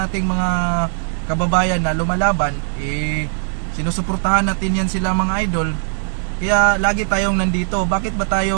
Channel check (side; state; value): left; silent; digital silence